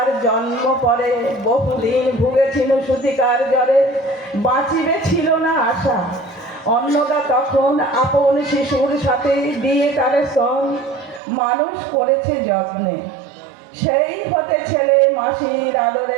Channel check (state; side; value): drops out; left; at 11.2 s